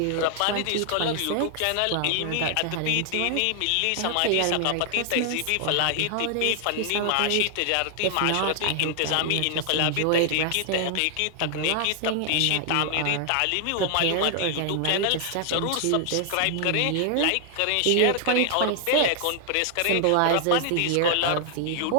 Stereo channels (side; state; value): both; different; correlation 0.00